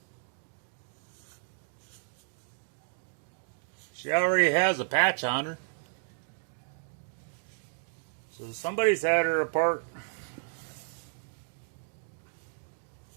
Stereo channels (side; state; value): left; silent; digital silence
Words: she already has a patch on her. So somebody's had her apart.